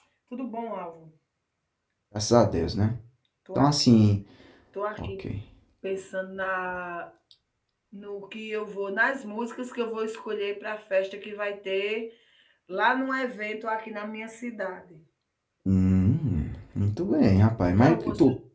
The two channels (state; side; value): identical; both; correlation 1.00